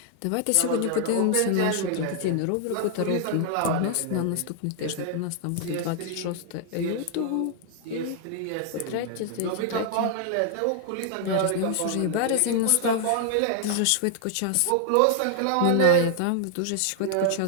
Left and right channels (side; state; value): both; different; correlation -0.01